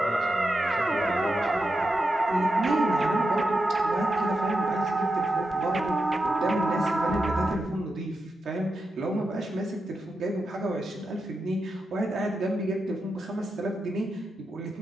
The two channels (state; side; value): normal; both; correlation 0.88